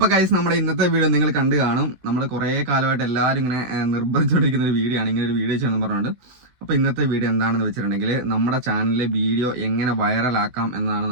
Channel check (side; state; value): left; late; 15 ms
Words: ഗൈസ്, നമ്മുടെ ഇന്നത്തെ വീഡിയോ നിങ്ങൾ കണ്ടു കാണും. നമ്മൾ കുറേ കാലമായിട്ട് എല്ലാവരും ഇങ്ങനെ നിർബന്ധിച്ചുകൊണ്ടിരിക്കുന്ന ഒരു വീഡിയോ ആണ്, ഇങ്ങനെ ഒരു വീഡിയോ ചെയ്യണമെന്ന് പറഞ്ഞുകൊണ്ട്. അപ്പോൾ ഇന്നത്തെ വീഡിയോ എന്താണെന്ന് വെച്ചിട്ടുണ്ടെങ്കിൽ നമ്മുടെ ചാനലിലെ വീഡിയോ എങ്ങനെ വൈറലാക്കാം എന്നതാണ്